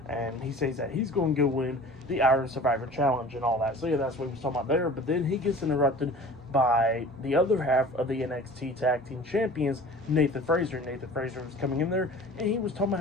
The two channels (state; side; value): normal; both; correlation 0.43